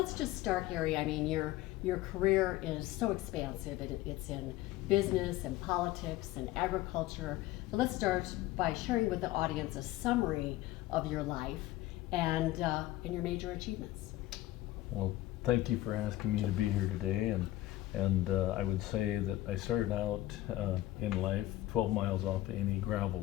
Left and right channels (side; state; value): right; quieter; 16.1 dB